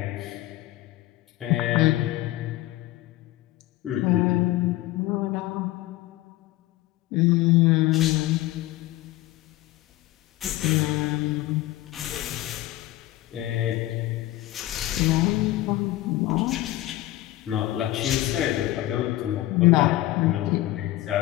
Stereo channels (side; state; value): right; quieter; 16.3 dB